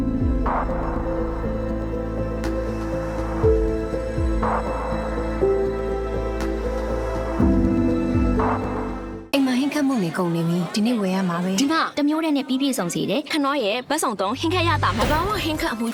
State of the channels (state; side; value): identical; both; correlation 1.00